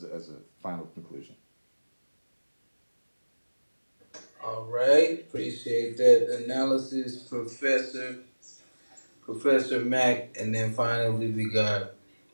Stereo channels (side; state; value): both; inverted; correlation -1.00